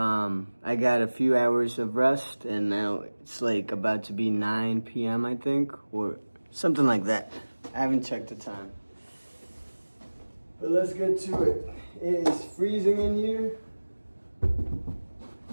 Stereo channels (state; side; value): inverted; both; correlation -1.00